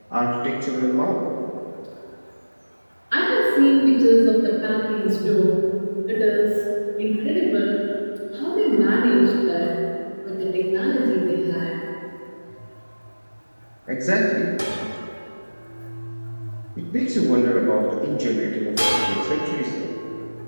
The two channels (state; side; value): inverted; both; correlation -1.00